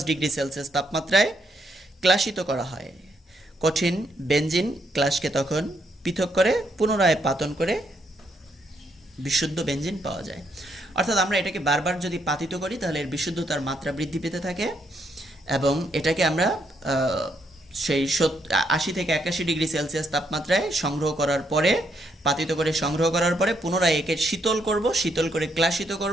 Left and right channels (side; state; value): both; normal; correlation 0.75